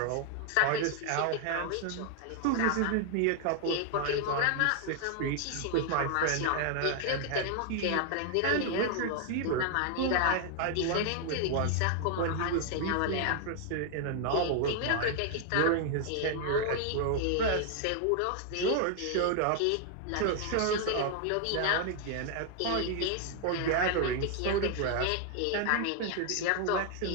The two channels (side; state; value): both; different; correlation 0.00